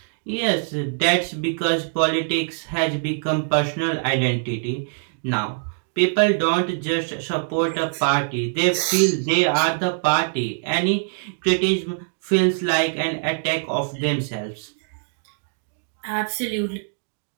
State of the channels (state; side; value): silent; left; digital silence